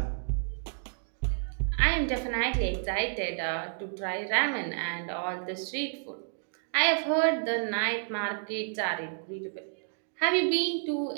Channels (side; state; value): left; silent; digital silence